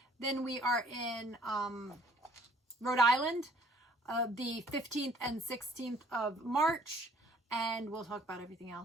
Then we are in Rhode Island, the 15th and 16th of March. And we'll talk about everything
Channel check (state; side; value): normal; both; correlation 0.59